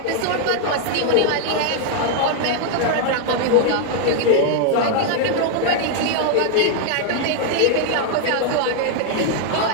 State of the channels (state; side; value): different; both; correlation 0.00